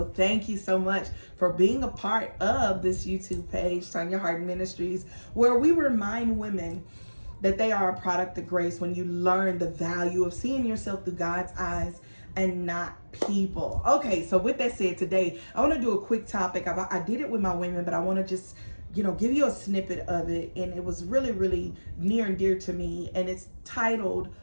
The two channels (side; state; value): both; inverted; correlation -1.00